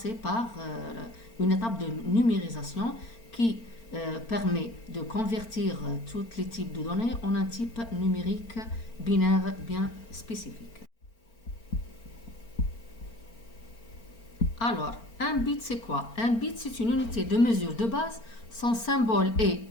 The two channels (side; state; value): right; late; 4.4 ms